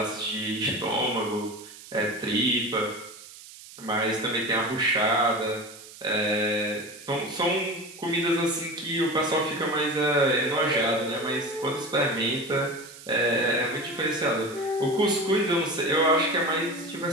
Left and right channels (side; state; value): right; noise; hiss, 17 dB below the sound